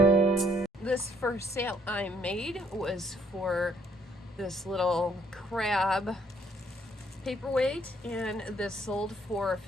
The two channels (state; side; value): normal; both; correlation 0.67